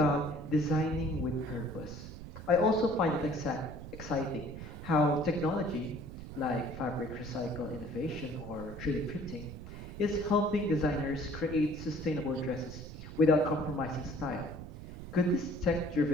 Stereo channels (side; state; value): right; noise; rumble, 11 dB below the sound